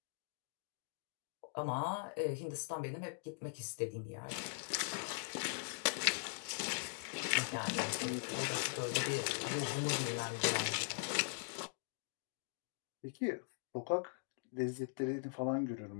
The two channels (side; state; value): right; silent; digital silence